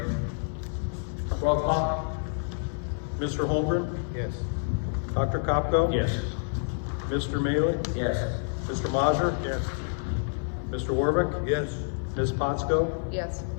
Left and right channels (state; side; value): silent; right; digital silence